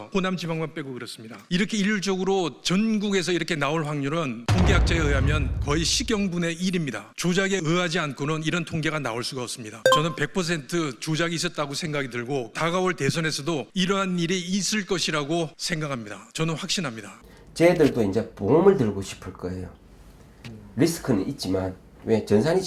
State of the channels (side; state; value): both; identical; correlation 1.00